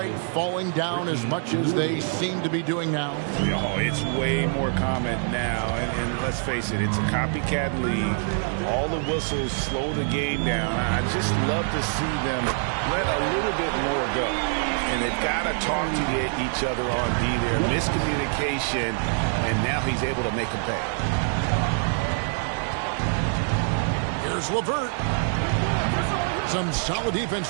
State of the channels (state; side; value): silent; left; 58 dB below the other